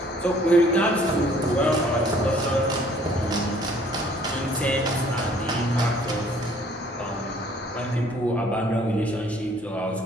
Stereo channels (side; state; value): both; normal; correlation 0.58